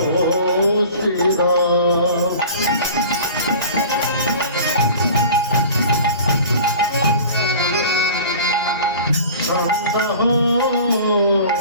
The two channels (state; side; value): inverted; both; correlation -0.41